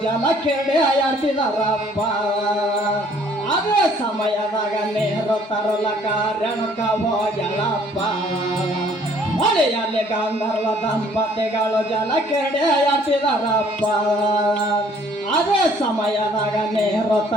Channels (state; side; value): normal; both; correlation 0.60